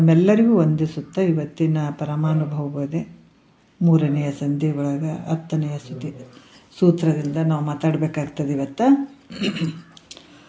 ವಂದಿಸುತ್ತಾ, ಇವತ್ತಿನ ಪರಮಾನುಭವ ಬೋಧೆ 3ನೆಯ ಸಂಧಿ ಒಳಗೆ 10ನೆಯ ಸೂತ್ರದಿಂದ ನಾವು ಮಾತಾಡಬೇಕಾಗ್ತದೆ ಇವತ್ತು.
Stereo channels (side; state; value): both; identical; correlation 1.00